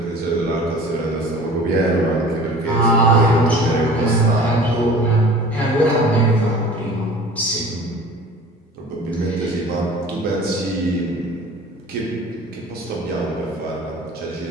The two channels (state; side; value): normal; both; correlation 0.43